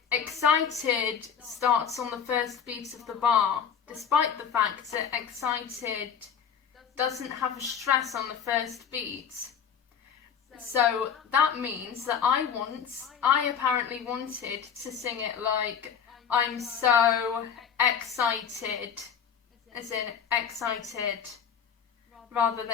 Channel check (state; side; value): quieter; right; 7.5 dB